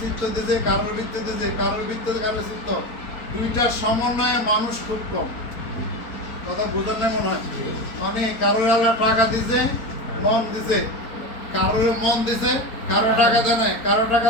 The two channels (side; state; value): right; late; 4.3 ms